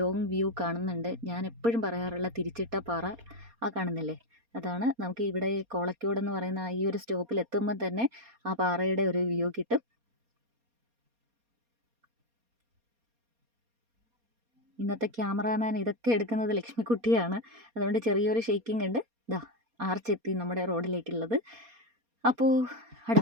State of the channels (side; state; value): left; late; 4.2 ms